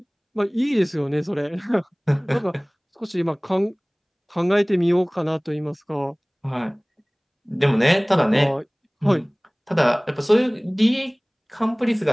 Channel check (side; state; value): both; identical; correlation 1.00